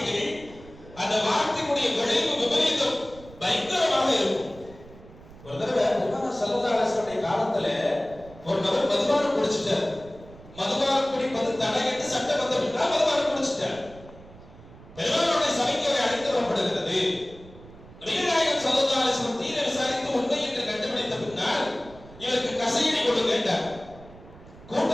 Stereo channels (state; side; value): noise; right; rumble, 20 dB below the sound